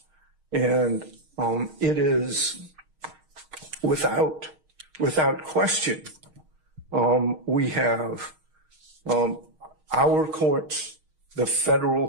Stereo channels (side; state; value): left; late; 6.4 ms